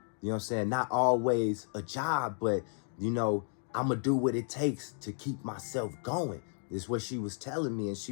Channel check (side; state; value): right; silent; 56 dB below the other